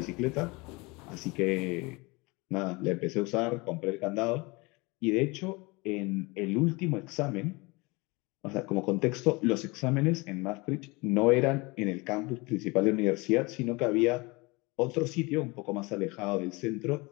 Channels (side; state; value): right; quieter; 25.4 dB